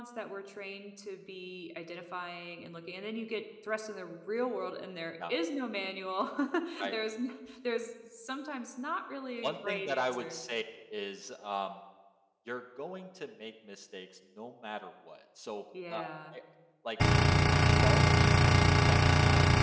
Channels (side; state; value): both; identical; correlation 1.00